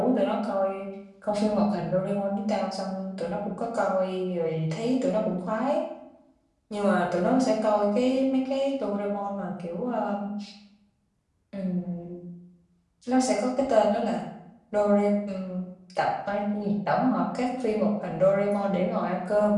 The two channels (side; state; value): both; identical; correlation 1.00